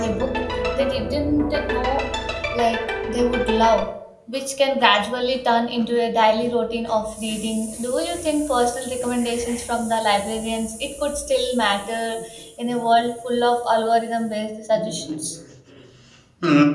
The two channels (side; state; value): both; identical; correlation 1.00